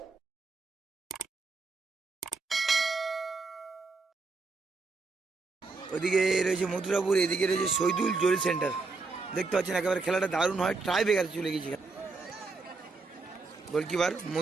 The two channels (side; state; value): left; quieter; 4.0 dB